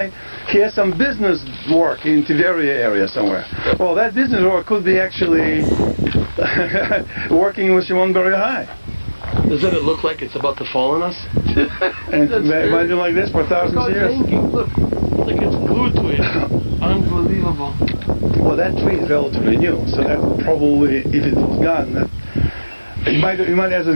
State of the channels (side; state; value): both; inverted; correlation -1.00